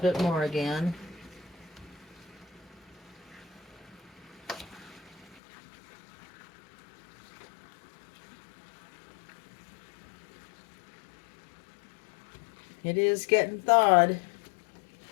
more again. It is getting thawed.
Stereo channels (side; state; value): right; drops out; at 5.4 s